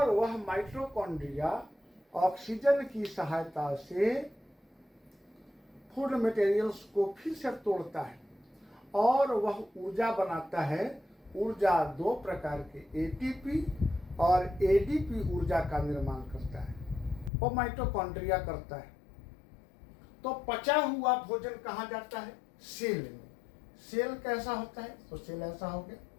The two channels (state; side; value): drops out; right; at 17.3 s